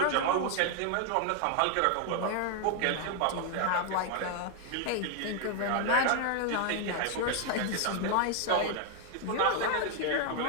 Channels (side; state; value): both; different; correlation 0.00